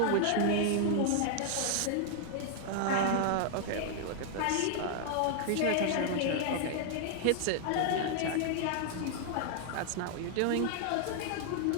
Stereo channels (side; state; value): both; different; correlation 0.00